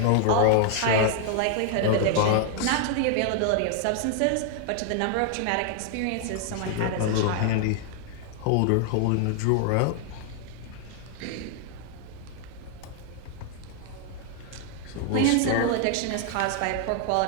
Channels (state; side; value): different; both; correlation 0.00